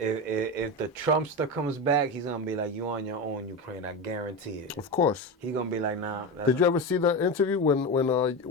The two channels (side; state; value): both; normal; correlation 0.20